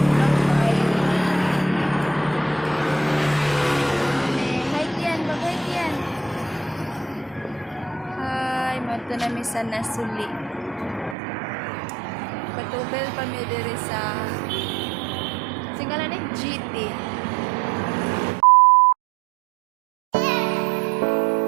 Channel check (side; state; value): left; drops out; at 11.2 s